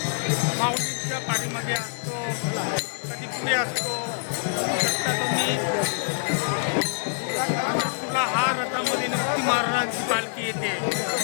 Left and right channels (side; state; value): right; silent; digital silence